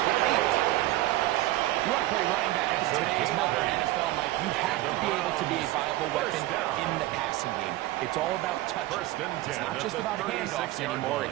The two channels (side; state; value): left; quieter; 16.8 dB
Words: 8. You want to play running back in today's modern NFL, Mike, you have to be able to be a viable weapon in the passing game. It's all about touch. It's not just about handoffs anymore.